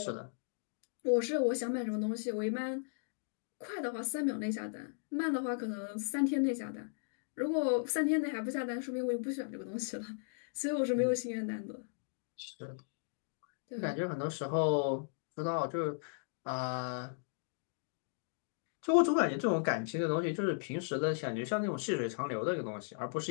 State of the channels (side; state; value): right; silent; digital silence